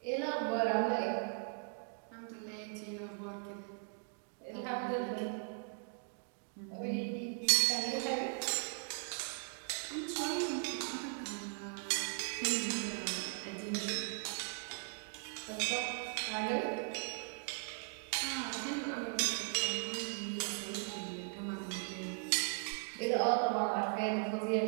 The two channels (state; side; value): silent; left; 52 dB below the other